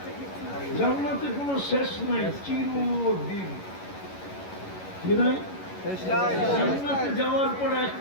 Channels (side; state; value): right; late; 11 ms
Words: জান্নাতে কোনো শেষ নাই, চিরদিন। কি নাই? জান্নাতে যাওয়ার পর